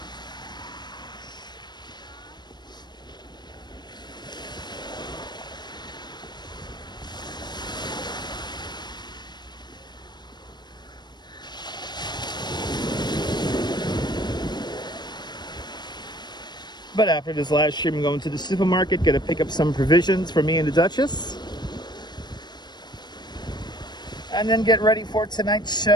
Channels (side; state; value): right; late; 0.21 ms